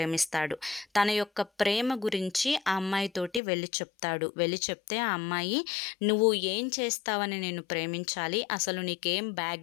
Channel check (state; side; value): drops out; right; at 3.4 s